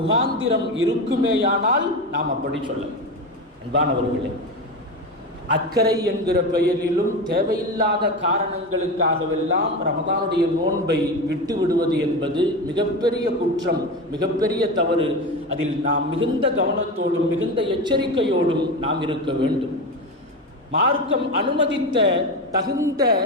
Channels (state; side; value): normal; both; correlation 0.22